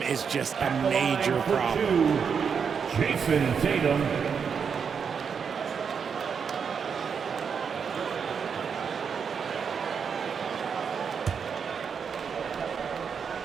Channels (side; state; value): left; quieter; 6.5 dB